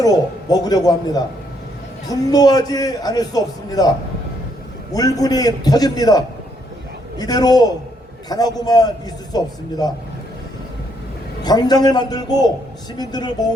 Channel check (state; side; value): normal; both; correlation 0.72